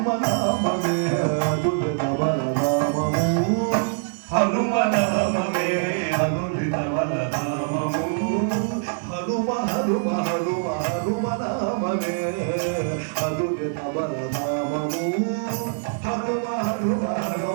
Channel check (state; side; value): silent; left; 63 dB below the other